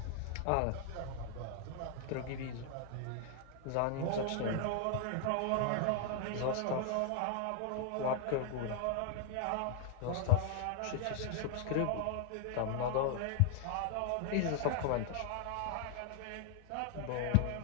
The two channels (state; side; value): different; both; correlation 0.00